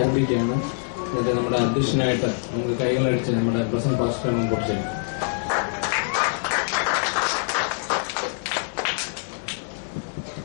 എന്നിട്ട് നമ്മുടെ അധ്യക്ഷനായിട്ട് നമുക്ക് കൈകളടിച്ച് നമ്മുടെ പ്രസന്റ് പാസ്റ്റർ മുമ്പോട്ട് ചെയ്യും.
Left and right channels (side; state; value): right; silent; 61 dB below the other